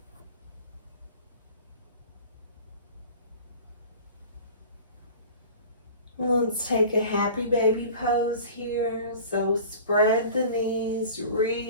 Let's take a happy baby pose here. So spread the knees,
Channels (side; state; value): both; inverted; correlation -0.41